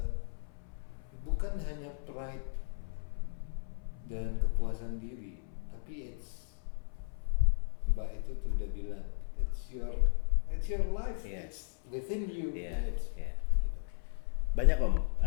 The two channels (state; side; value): silent; right; 54 dB below the other